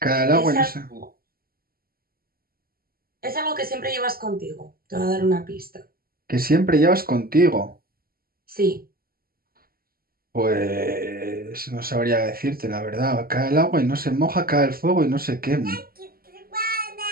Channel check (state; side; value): late; left; 0.43 ms